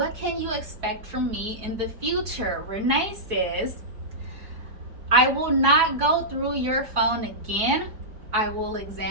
can you expect from me in the future? Renee says, "I will not go through your phone again. I will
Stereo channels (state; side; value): late; left; 4.7 ms